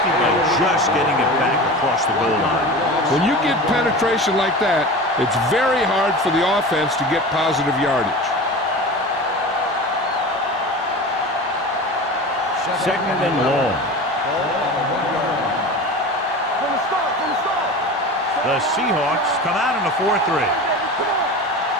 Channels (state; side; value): normal; both; correlation 0.32